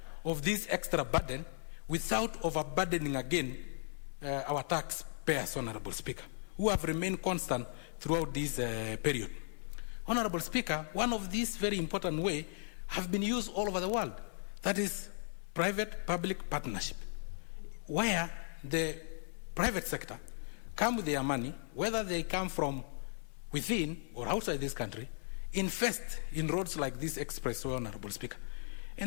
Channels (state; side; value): silent; right; 53 dB below the other